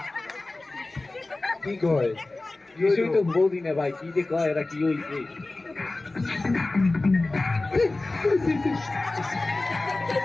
কি কয় কিছুই তো বলদি না ভাই, কি যে কয় এরা কি হইছে?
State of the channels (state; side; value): quieter; right; 3.1 dB